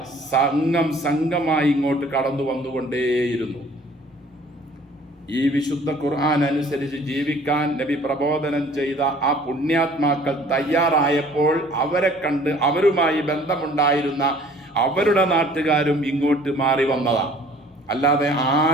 സംഘമായി ഇങ്ങോട്ട് കടന്നു വന്നുകൊണ്ടേയിരുന്നു. ഈ വിശുദ്ധ ഖുർആൻ അനുസരിച്ച് ജീവിക്കാൻ നബി പ്രബോധനം ചെയ്ത ആ പുണ്യാത്മാക്കൾ തയ്യാറായപ്പോൾ അവരെ കണ്ട് അവരുമായി ബന്ധമുണ്ടായിരുന്ന അവരുടെ നാട്ടുകാരും ഇങ്ങോട്ട് മാറി വന്നതാണ്. അല്ലാതെ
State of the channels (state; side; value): normal; both; correlation 0.53